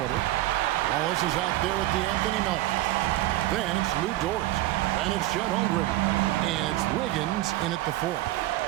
Wallace is out there with the Anthony Melton. Then it's Lou Dort. Then it's Chet Holmgren. And it's Wiggins in at the 4.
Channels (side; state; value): left; quieter; 16.2 dB